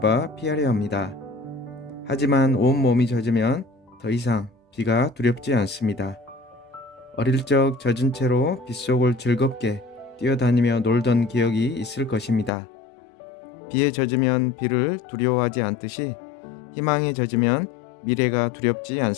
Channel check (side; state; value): right; drops out; at 12.5 s